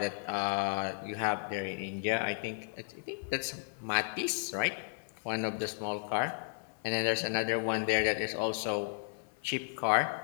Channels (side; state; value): right; silent; 55 dB below the other